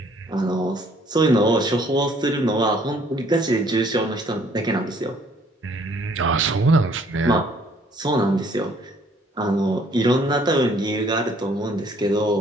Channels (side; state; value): both; normal; correlation 0.61